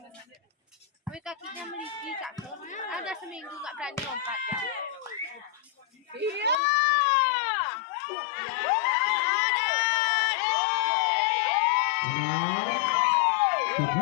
Wih kakinya meliki kak. Ada seminggu nggak berani lompat ya. Iya. Enam.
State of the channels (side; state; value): right; drops out; at 6.6 s